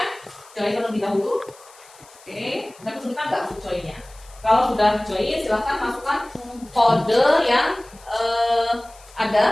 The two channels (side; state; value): left; noise; hiss, 24 dB below the sound